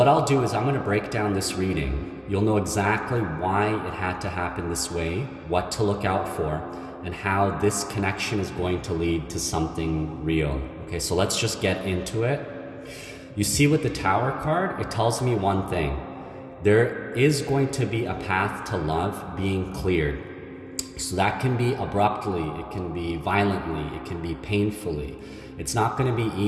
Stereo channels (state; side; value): identical; both; correlation 1.00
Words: I'll do is I'm gonna break down this reading. You'll know exactly why it had to happen this way, what to look out for, and how this connection is going to lead to something real. Okay, so let's just get into it. You see with the Tower card, it tells me one thing. There is going to be a path to love being cleared. So that can be abruptly, it can be violently, it can be painfully. It's not going to be